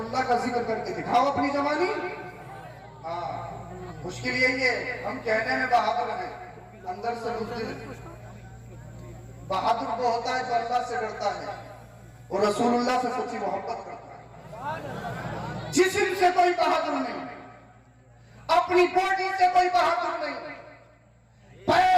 اللہ کا ذکر کر کے دکھاؤ اپنی زبانی۔ ہاں مشکل یہی ہے ہم کہنے میں بہادر ہیں، اندر سے بزدل۔ بہادر وہ ہوتا ہے جو اللہ سے ڈرتا ہے اور رسول اللہ سے سچی محبت کرتا ہے۔ جسم سے کوئی بہادر نہیں، اپنی باڈی سے کوئی بہادر نہیں،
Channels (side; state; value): both; identical; correlation 1.00